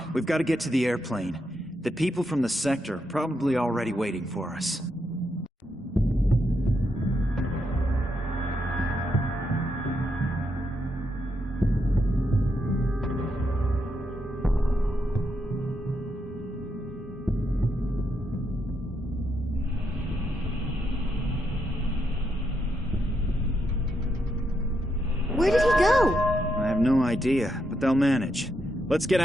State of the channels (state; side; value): normal; both; correlation 0.81